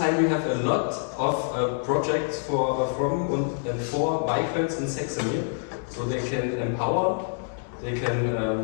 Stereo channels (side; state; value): right; silent; digital silence